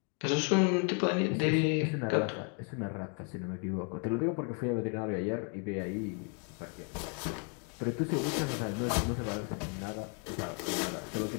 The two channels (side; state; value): right; quieter; 39.7 dB